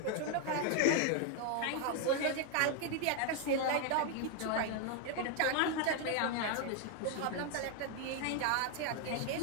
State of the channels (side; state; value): both; different; correlation 0.01